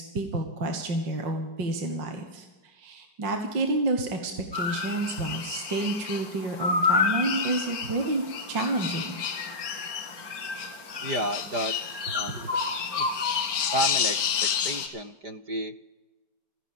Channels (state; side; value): late; left; 4.5 ms